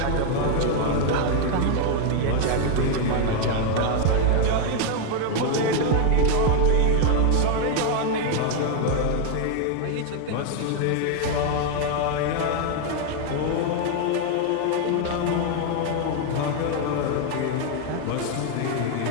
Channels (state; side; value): different; both; correlation 0.00